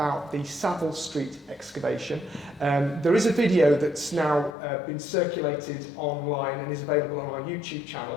the Saville Street excavation. There is a video that's now been circulated online and is available on our YouTube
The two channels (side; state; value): right; drops out; at 4.5 s